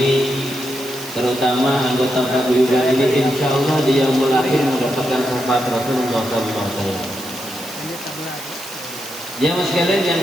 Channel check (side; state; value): right; noise; hiss, 13 dB below the sound